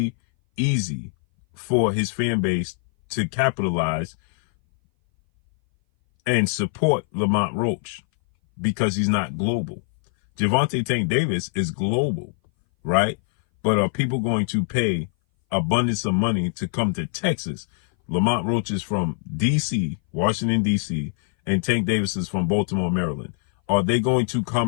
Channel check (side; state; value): right; silent; 59 dB below the other